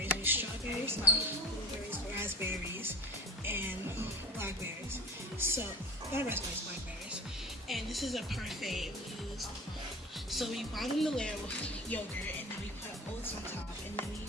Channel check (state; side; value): normal; both; correlation 0.39